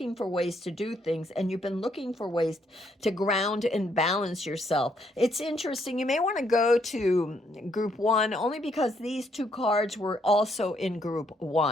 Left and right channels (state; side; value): normal; both; correlation 0.72